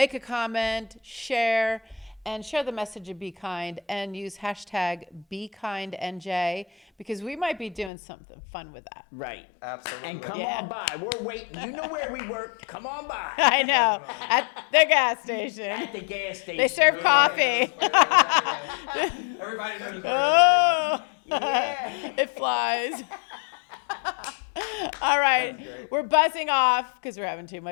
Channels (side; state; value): right; drops out; at 7.9 s